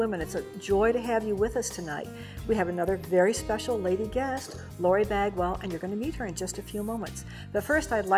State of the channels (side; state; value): both; identical; correlation 1.00